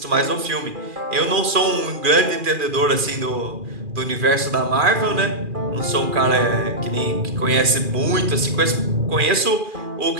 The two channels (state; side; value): late; left; 2.4 ms